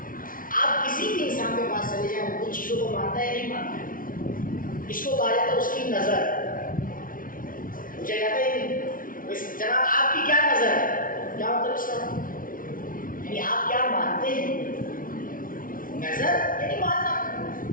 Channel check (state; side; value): late; right; 0.40 ms